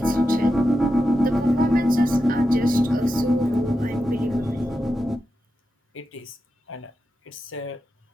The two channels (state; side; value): normal; both; correlation 0.89